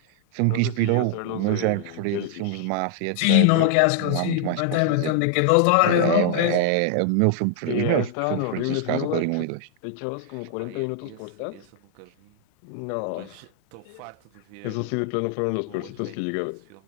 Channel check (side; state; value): both; different; correlation 0.00